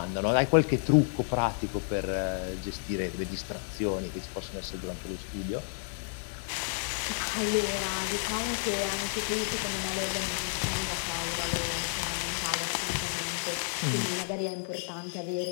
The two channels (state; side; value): silent; right; digital silence